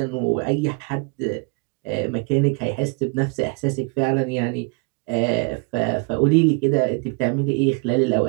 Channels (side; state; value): left; quieter; 30.2 dB